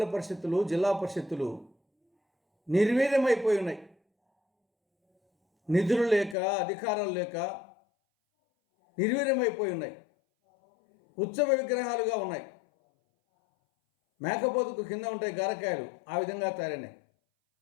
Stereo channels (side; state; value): right; drops out; at 6.4 s